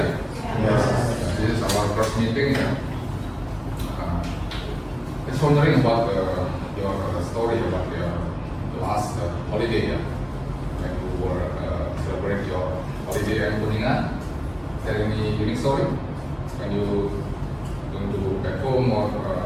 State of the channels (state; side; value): identical; both; correlation 1.00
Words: Yes. This is our first meeting. Just wondering about your story about your last holiday, yeah? When you were celebrating your holiday in Kuningan. Is there any unique story when you going to back home or